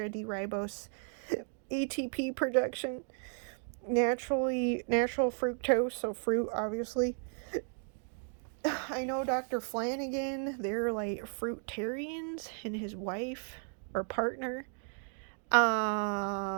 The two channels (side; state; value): left; silent; 55 dB below the other